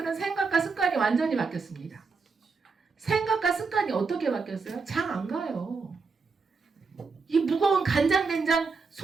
생각과 습관이 완전히 바뀌었습니다. 생각과 습관이 어떻게 바뀌었어요? 장 안 가요. 이 무거운 간장된장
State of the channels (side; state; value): left; quieter; 4.6 dB